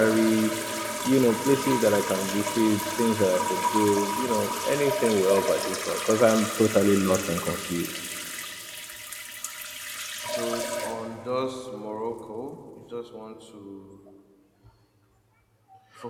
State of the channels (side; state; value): both; identical; correlation 1.00